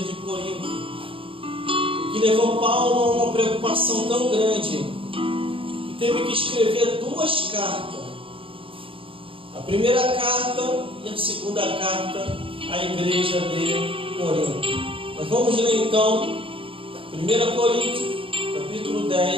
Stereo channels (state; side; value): late; left; 0.26 ms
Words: Corinto, o que levou Paulo a uma preocupação tão grande que teve que escrever 2 cartas. A primeira carta e a segunda carta à igreja de Corinto. Nós vamos ler então 1 Coríntios, capítulo